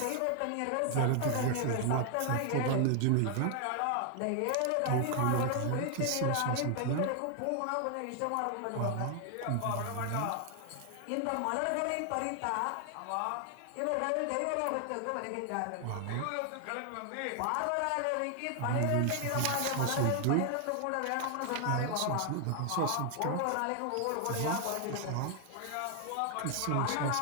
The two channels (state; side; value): different; both; correlation 0.00